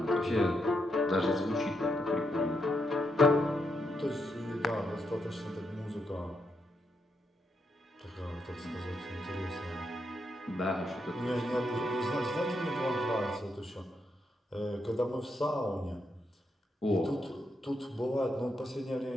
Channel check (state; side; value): normal; both; correlation 0.81